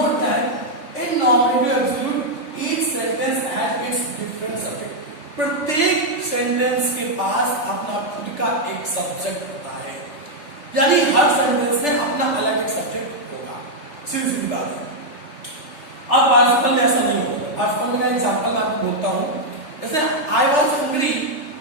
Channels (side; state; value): right; late; 3.4 ms